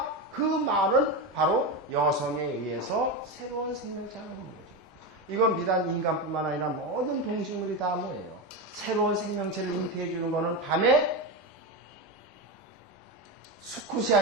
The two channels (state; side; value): normal; both; correlation 0.16